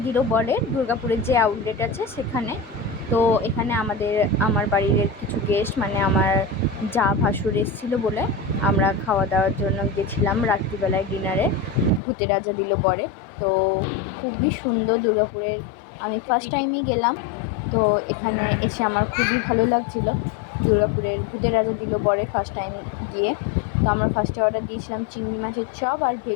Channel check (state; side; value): drops out; right; at 12.0 s